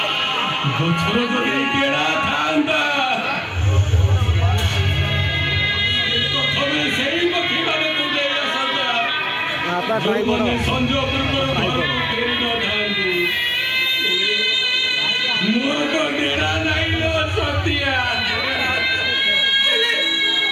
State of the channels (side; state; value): both; identical; correlation 1.00